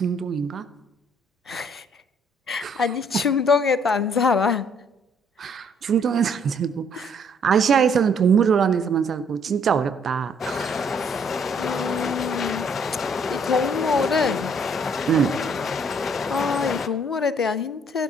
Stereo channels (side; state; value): both; normal; correlation 0.64